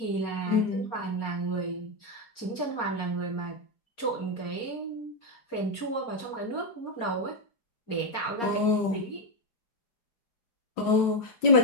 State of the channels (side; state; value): right; late; 4.3 ms